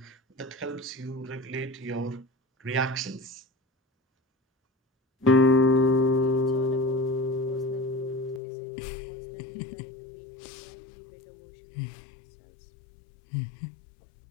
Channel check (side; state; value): right; drops out; at 8.4 s